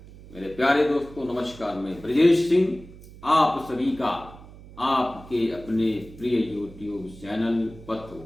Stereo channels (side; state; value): right; noise; hum, 19 dB below the sound